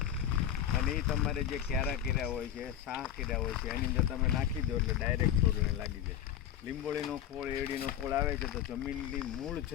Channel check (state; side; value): quieter; right; 10.2 dB